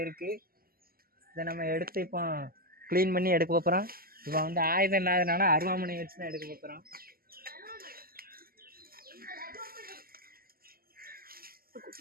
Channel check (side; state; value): left; late; 0.43 ms